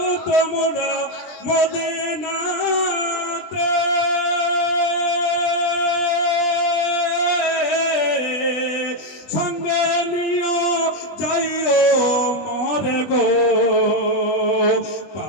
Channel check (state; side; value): late; right; 20 ms